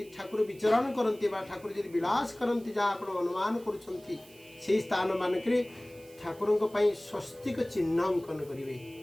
ठाकुर विचरण करती बा ठाकुर यदि विलास करती जहाँ आप अनुमान करुँच से स्थान मानक ठाकुर स्वस्तिक चिन्ह अंकन करेंगे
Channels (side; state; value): right; noise; hiss, 24 dB below the sound